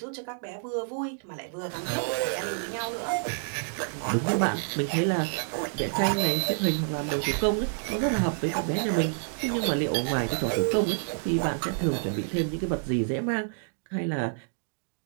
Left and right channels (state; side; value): silent; left; digital silence